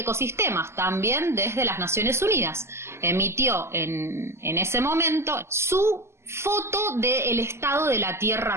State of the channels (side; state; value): left; late; 0.13 ms